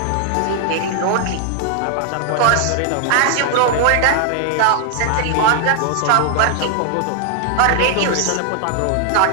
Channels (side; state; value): both; different; correlation 0.00